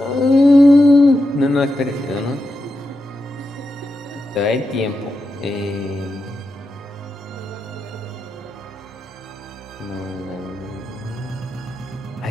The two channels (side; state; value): both; normal; correlation 0.88